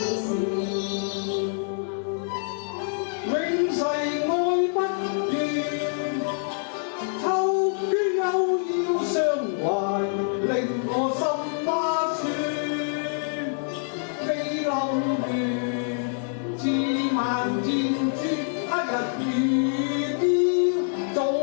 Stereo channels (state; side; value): silent; right; digital silence